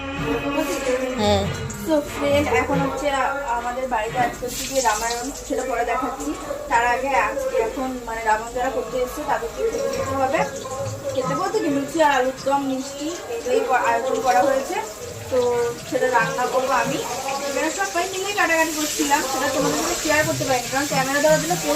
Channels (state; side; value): identical; both; correlation 1.00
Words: হ্যাঁ তো ফ্রেন্ড এখন হচ্ছে আমাদের বাড়িতে আজকে হচ্ছে গিয়ে রামায়ণ, সেটা পরে দেখাচ্ছি। তার আগে আজকে এখন মানে রামায়ণ যারা করতে এসছে তাদেরকে খেতে দিতে হবে। খেতে বলতে কি লুচি আর আলুর দম মিষ্টি এগুলোই আয়োজন করা হয়েছে। তো সেটা রান্না করবো আমি। এখানে সবাই মিলেই কাটাকাটি করছিলাম, সেটা তোমাদের সাথে শেয়ার করতে পারিনি কারণ ক্যামেরা দেওয়ার জন্য